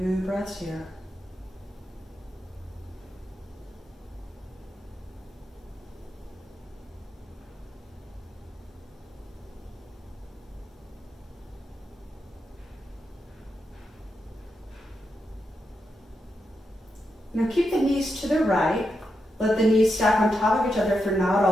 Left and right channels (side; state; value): both; normal; correlation 0.85